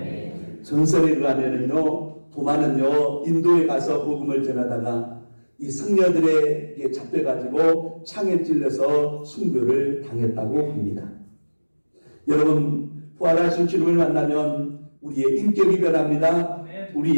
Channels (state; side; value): inverted; both; correlation -1.00